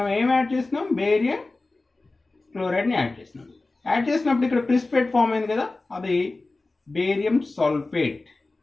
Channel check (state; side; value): quieter; right; 3.3 dB